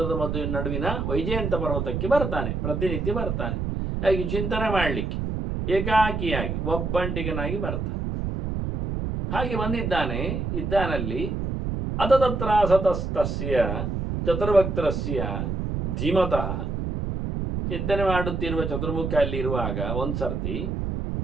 ನಡುವಿನ ವೈಜಯಂತ ಪರ್ವತಕ್ಕೆ ಬರ್ತಾನೆ, ಪ್ರತಿನಿತ್ಯ ಬರ್ತಾನೆ. ಹಾಗೆ ಚಿಂತನೆ ಮಾಡಲಿಕ್ಕೆ ಏಕಾಕಿಯಾಗಿ ಒಬ್ಬಂಟಿಗನಾಗಿ ಬರ್ತಾನೆ. ಹಾಗೆ ಇದ್ದಾನಲ್ಲಿ ಅತತತ್ರ ಸತಸ್ತಸ್ಯ ಚತುರ್ಭಕ್ತರಸ್ಯ ಧೀಮತಃ. ಚಿಂತನೆ ಮಾಡುತ್ತಿರುವ ಚತುರ್ಮುಖ ಅಲ್ಲಿ ಇರುವಾಗ ಒಂದು ಸರ್ತಿ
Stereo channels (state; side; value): noise; right; rumble, 2 dB below the sound